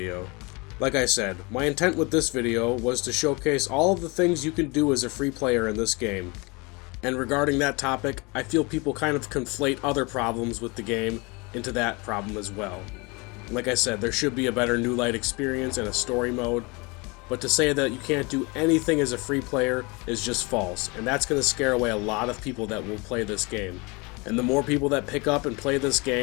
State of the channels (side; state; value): right; quieter; 27.4 dB